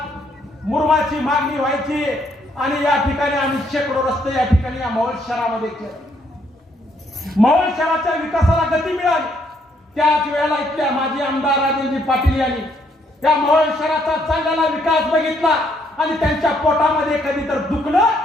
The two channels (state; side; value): normal; both; correlation 0.70